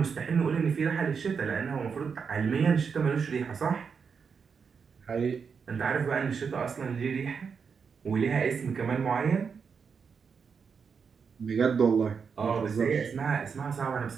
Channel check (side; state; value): left; quieter; 6.0 dB